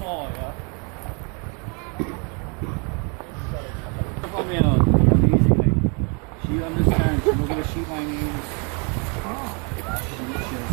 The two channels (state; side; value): quieter; left; 34.8 dB